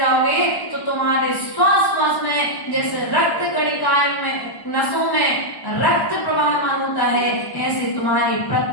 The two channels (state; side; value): late; right; 1.1 ms